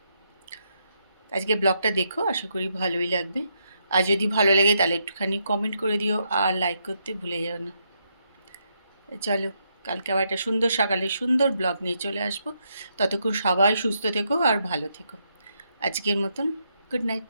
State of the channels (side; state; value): both; inverted; correlation -0.79